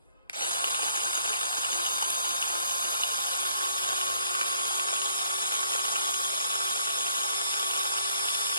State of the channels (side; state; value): both; inverted; correlation -0.64